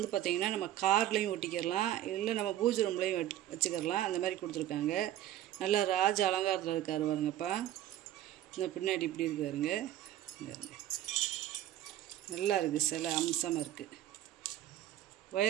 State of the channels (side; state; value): left; quieter; 12.7 dB